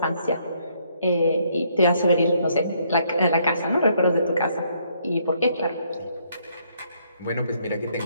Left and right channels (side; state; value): both; inverted; correlation -0.69